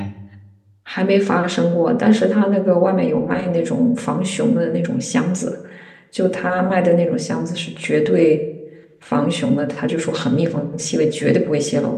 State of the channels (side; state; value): both; identical; correlation 1.00